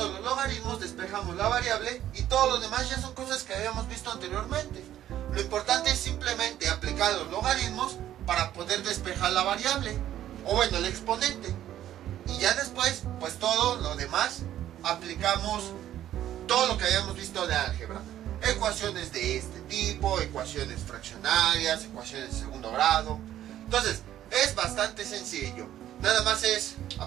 los logaritmos despejamos la variable y todo lo demás ya son cosas que habíamos visto anteriormente. Lo importante es simplemente aplicar los logaritmos para poder despejar la variable, o bueno, el exponente. Y ya después, pues todo lo demás, aplicamos todo lo que habíamos visto de álgebra. Ecuaciones de este tipo, ecuaciones fraccionarias, ecuaciones de segundo grado. Entonces, es bastante sencillo. Nada más es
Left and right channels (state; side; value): quieter; left; 12.1 dB